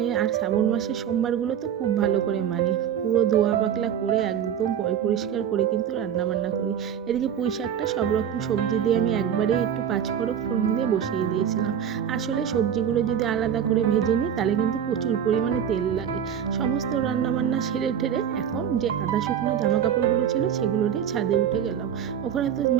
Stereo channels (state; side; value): quieter; left; 8.9 dB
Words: আর শ্রাবণ মাসের সোমবারগুলো তো খুব ভালো করে মানি, পুরো ধোয়া পাকলা করে একদম পরিষ্কার করে কিন্তু রান্নাবান্না করি। এদিকে পুঁই শাকটা সব রকম সবজি দিয়ে আমি একবারেই একটু পাঁচফোড়ন ফোড়ন দিয়ে বসিয়ে দিয়েছিলাম। আসলে সবজিগুলো যদি আলাদা করে ভেজে নিই তাহলে কিন্তু প্রচুর পরিমাণে তেল লাগে। সমস্ত রান্নাবান্না সেরে ঠেরে এখন যে আধা শুকনো জামা কাপড়গুলো ছিল সেগুলো নিয়ে ছাদে উঠে গেলাম। ওখানে তো